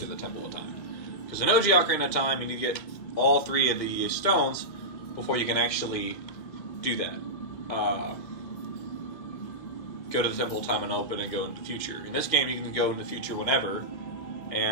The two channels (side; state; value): right; late; 1.9 ms